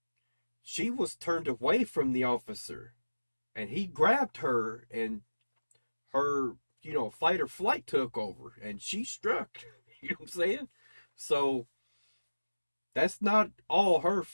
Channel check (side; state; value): both; inverted; correlation -1.00